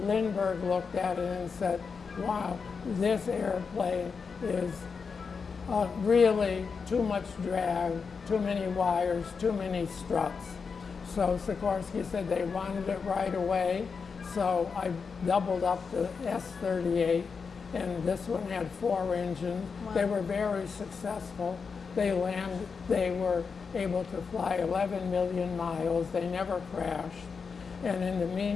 looked at it and said, wow, this airplane is really too much drag, too many wires, too many struts. So Sikorsky said they wanted it right away. So I doubled up the S-38, and this one had 4 engines. Wow. They were very successful. They were able to fly 11 million miles. They never crashed. And in the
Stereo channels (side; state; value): right; quieter; 5.4 dB